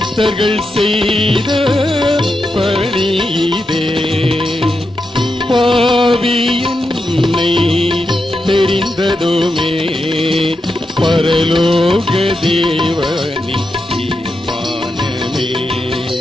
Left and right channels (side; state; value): both; normal; correlation 0.87